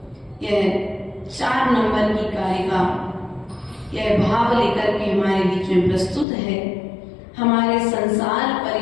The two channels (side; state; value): right; drops out; at 6.2 s